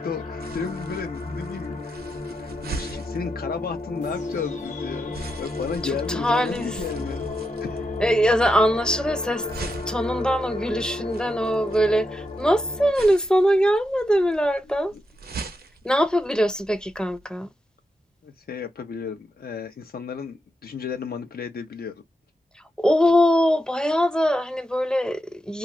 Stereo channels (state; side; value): normal; both; correlation 0.85